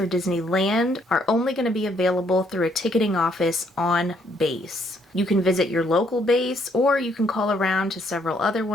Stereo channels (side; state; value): both; normal; correlation 0.69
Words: Disneyland are only going to be available through a ticketing office on base. You can visit your local base, or you can call around to several other